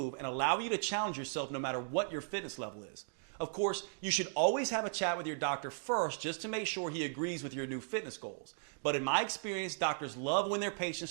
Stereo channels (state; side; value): silent; left; digital silence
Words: and allow you to challenge yourself no matter what your fitness level is. Of course, you should always have a chat with your doctor first just to make sure he agrees with your new fitness goals. But in my experience, doctors love when their patients